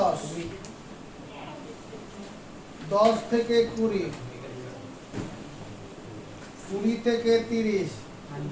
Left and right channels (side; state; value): both; identical; correlation 1.00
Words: 10 থেকে 20, 20 থেকে 30,